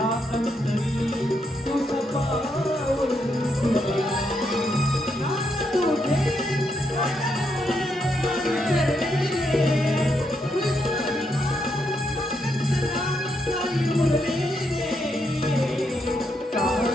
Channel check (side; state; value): both; normal; correlation 0.79